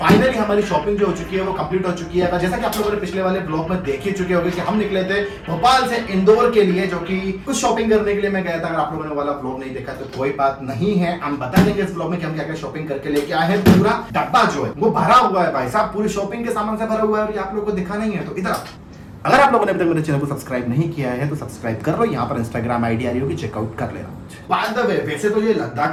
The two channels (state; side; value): identical; both; correlation 1.00